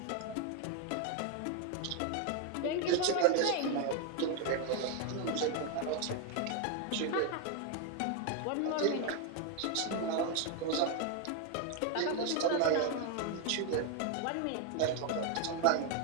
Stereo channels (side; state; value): both; different; correlation 0.01